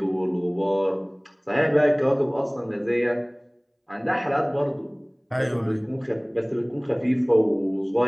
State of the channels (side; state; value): both; identical; correlation 1.00